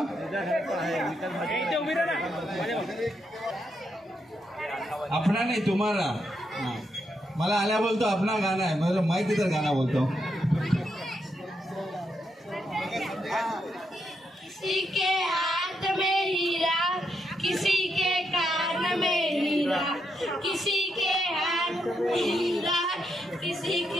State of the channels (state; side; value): normal; both; correlation 0.81